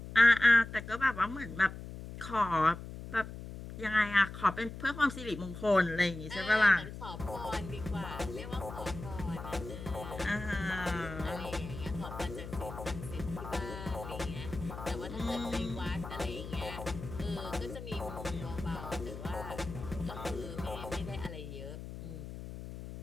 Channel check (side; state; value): left; noise; hum, 10 dB below the sound